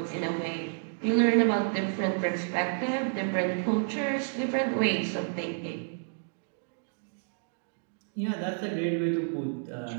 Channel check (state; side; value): silent; left; digital silence